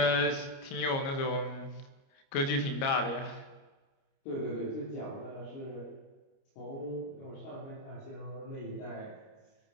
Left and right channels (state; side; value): late; right; 29 ms